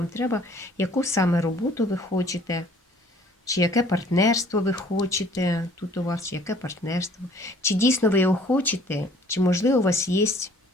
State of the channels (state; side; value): normal; both; correlation 0.56